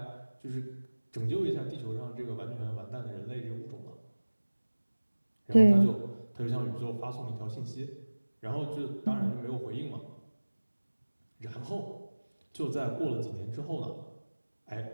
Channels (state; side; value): inverted; both; correlation -1.00